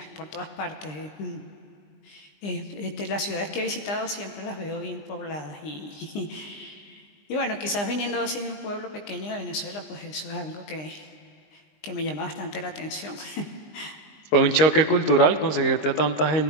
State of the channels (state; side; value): late; right; 20 ms